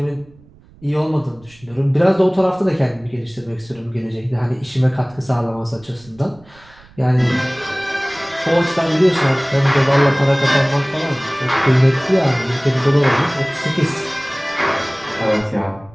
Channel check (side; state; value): right; noise; rumble, 26 dB below the sound